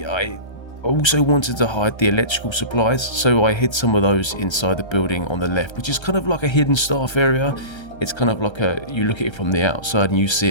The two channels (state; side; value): late; right; 1.3 ms